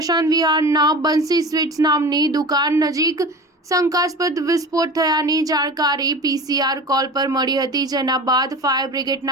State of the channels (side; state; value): both; normal; correlation 0.34